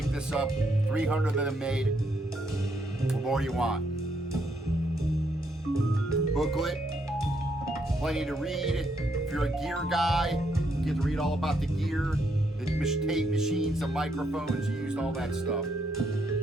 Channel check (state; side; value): normal; both; correlation 0.75